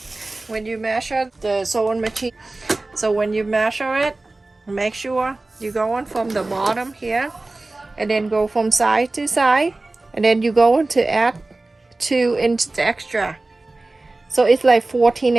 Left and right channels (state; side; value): quieter; left; 3.1 dB